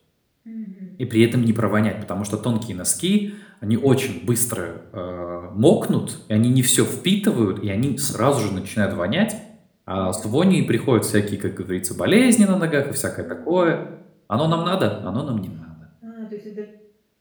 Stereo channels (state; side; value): identical; both; correlation 1.00